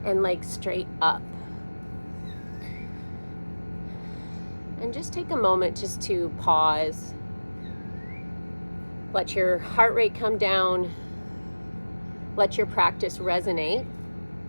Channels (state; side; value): inverted; both; correlation -1.00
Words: and legs straight up. And just take a moment just to pause Let your heart rate come down. Let your practice resonate.